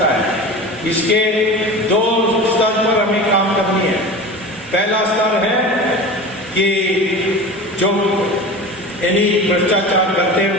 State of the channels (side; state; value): both; normal; correlation 0.33